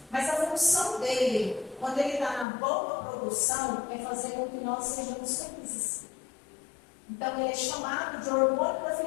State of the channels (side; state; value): right; drops out; at 2.5 s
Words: Mas a função dele, quando ele está na boa produção, é fazer com que nós sejamos felizes. Então, ele é chamado de hormônio da